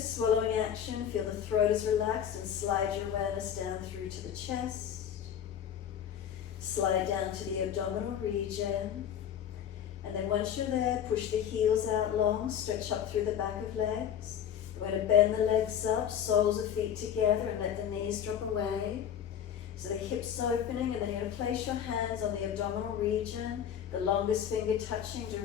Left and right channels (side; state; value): right; quieter; 9.1 dB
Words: action. Feel the throat is relaxed and slide your awareness down through to the chest. Slide down to the abdominal region. And then once you're there, push the heels out long, stretch up through the back of legs. We're going to bend the legs up, soles of feet together, and let the knees drop away. So the hips opening, and then you're going to place your hands on the abdominal region, the longest finger touching